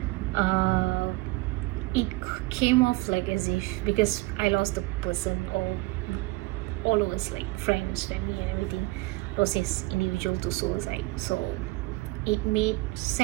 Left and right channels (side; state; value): left; quieter; 21.3 dB